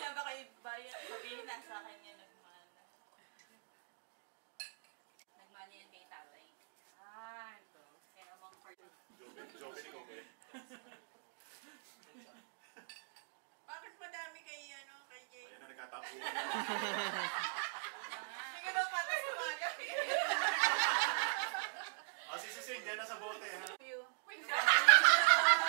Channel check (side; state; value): left; silent; digital silence